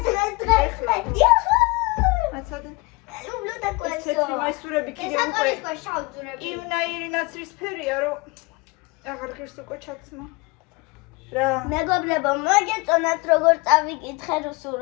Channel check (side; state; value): right; quieter; 25.6 dB